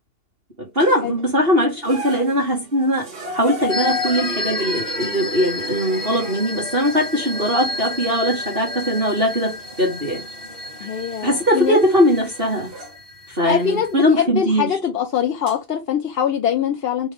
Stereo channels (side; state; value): left; late; 2.8 ms